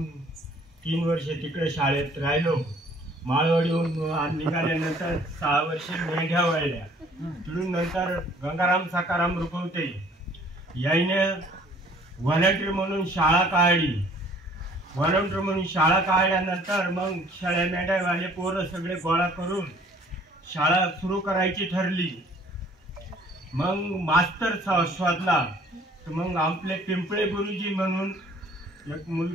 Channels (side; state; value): both; normal; correlation 0.56